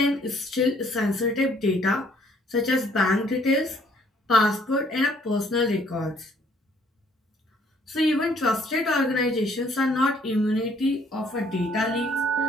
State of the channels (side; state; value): both; normal; correlation 0.63